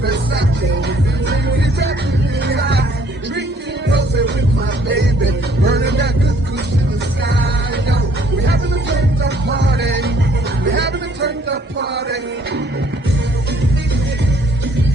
Versace, drinking rose with my baby, burning that good kush in the sky. Yo, we're having a turned up party, we're having a turned up party.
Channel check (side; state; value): both; normal; correlation 0.62